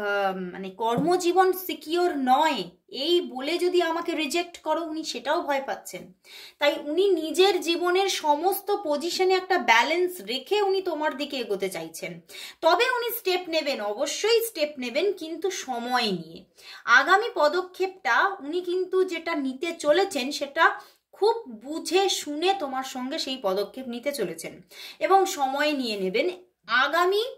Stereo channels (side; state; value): both; identical; correlation 1.00